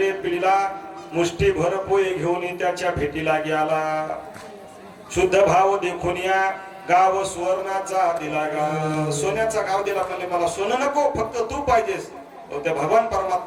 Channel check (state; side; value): identical; both; correlation 1.00